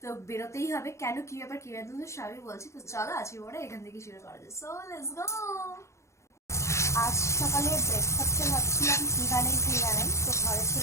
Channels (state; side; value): late; right; 0.14 ms